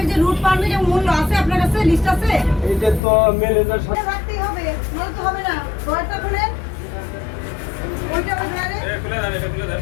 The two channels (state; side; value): drops out; right; at 3.0 s